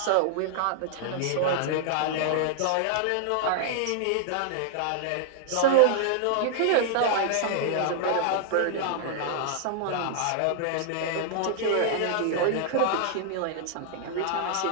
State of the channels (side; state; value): both; different; correlation -0.01